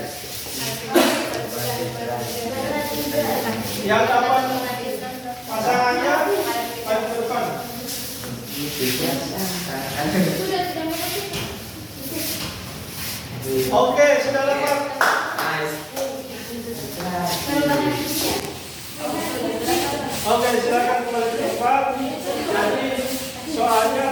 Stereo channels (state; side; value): identical; both; correlation 1.00